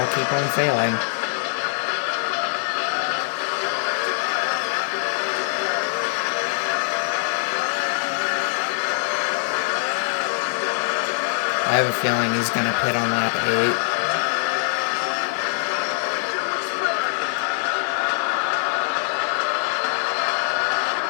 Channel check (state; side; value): silent; right; 58 dB below the other